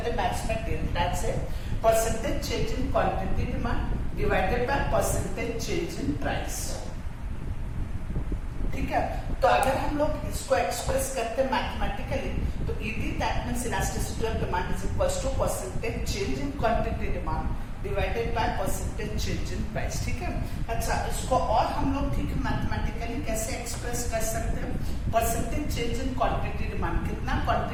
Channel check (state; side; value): identical; both; correlation 1.00